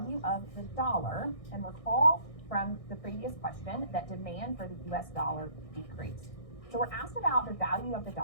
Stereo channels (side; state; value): right; late; 1.6 ms